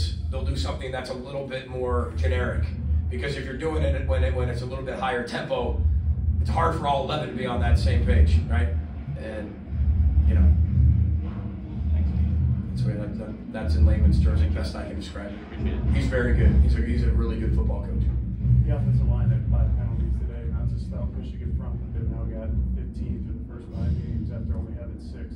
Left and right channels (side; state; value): both; identical; correlation 1.00